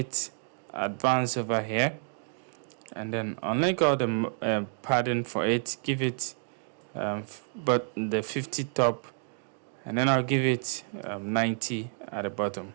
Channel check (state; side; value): silent; left; 58 dB below the other